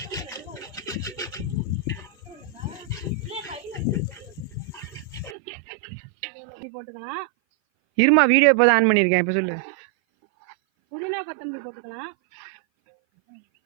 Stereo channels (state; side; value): drops out; left; at 5.4 s